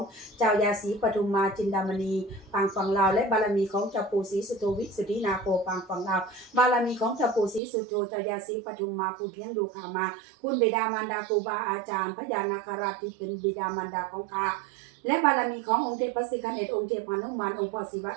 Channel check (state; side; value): drops out; left; at 7.6 s